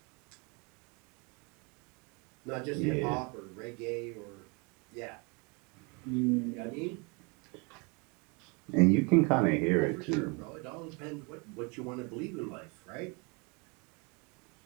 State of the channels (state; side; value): quieter; left; 30.7 dB